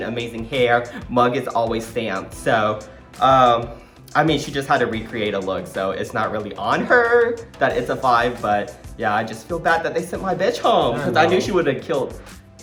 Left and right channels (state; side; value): identical; both; correlation 1.00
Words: amazing hair. Mug is always stamped. So, I mean, she just had to recreate a look, so it's not really on her that it's a 5, but yeah, I just feel bad that they sent my bitch home, because I knew she would have killed